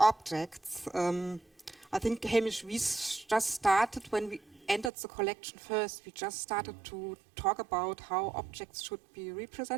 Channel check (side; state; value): left; drops out; at 4.9 s